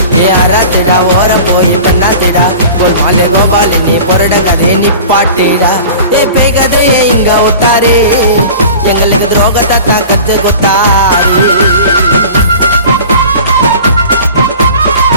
ஏ அராத்திடா ஓரம் போய் பெண்ணாத்திடா கோல்மாலே கோபாலி நீ பொரட கதையை நிப்பாட்டிடா ஏ பேய் கதையை இங்க ஒத்தாரே எங்களுக்கு துரோகத்தை தான் கத்து கொத்தாரி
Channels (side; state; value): both; inverted; correlation -0.40